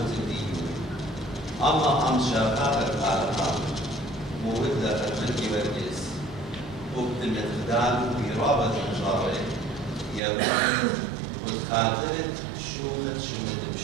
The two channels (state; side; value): drops out; left; at 10.2 s